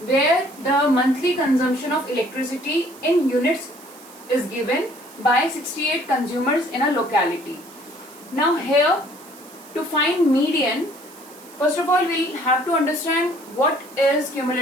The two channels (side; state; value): right; noise; hiss, 21 dB below the sound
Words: where the monthly consumption of electricity in units is given by 68 consumers in a locality. Now here, to find median, first of all we'll have to understand what is